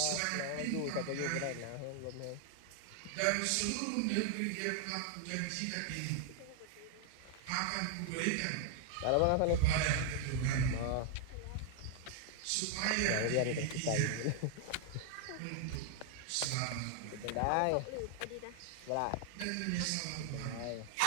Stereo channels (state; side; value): different; both; correlation 0.00